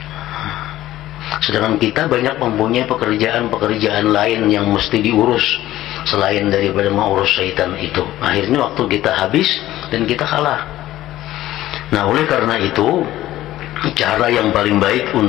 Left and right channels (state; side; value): quieter; right; 14.8 dB